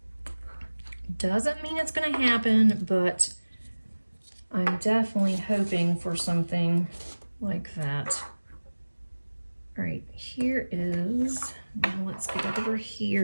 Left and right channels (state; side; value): inverted; both; correlation -1.00